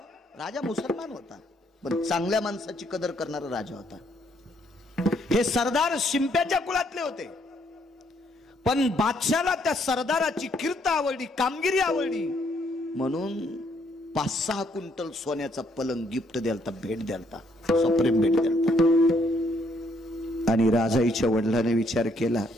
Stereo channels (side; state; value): both; normal; correlation 0.70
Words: राजा मुसलमान होता पण चांगल्या माणसाची कदर करणारा राजा होता. हे सरदार शिंप्याच्या कुळातले होते, पण बादशाला त्या सरदाराची कीर्त आवडली, कामगिरी आवडली, म्हणून 5-6 क्विंटल सोन्याचा पलंग गिफ्ट द्यालता, भेट द्यालता, सप्रेम भेट द्यालता. आणि राजाईच्या वडिलांनी विचार केला,